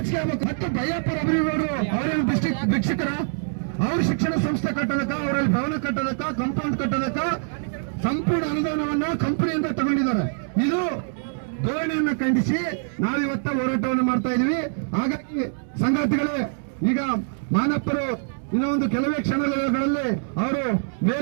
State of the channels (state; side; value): silent; left; digital silence